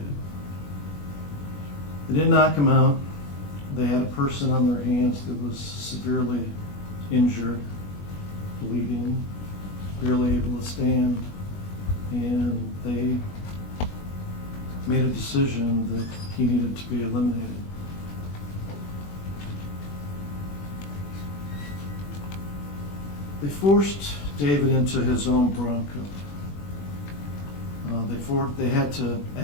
They didn't knock him out. They had a person on their hands that was severely injured, bleeding, barely able to stand, and they made a decision that he needed to be eliminated. They forced David into his own Bronco. They had to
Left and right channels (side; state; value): right; late; 21 ms